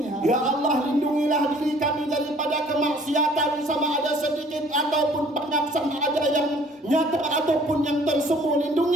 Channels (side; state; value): both; normal; correlation 0.56